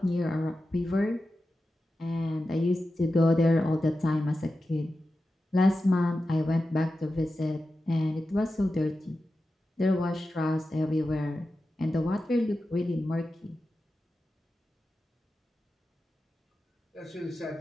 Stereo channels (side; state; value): both; normal; correlation 0.92